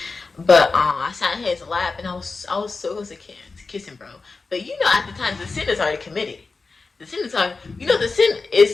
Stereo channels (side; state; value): right; quieter; 4.1 dB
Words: But I sat in his lap, and I was so close to kiss him, bro. But you know, at the time, the sin is already committed. The sin